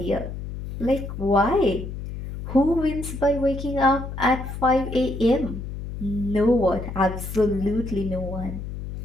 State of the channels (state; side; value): noise; left; hum, 8 dB below the sound